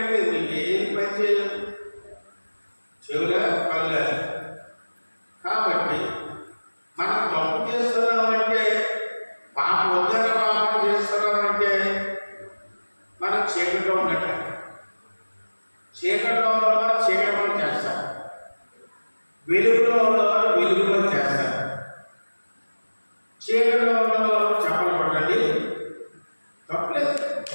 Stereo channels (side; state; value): both; inverted; correlation -1.00